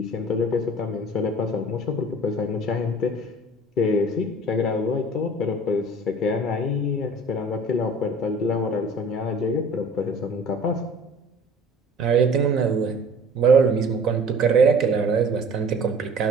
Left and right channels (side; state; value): both; normal; correlation 0.47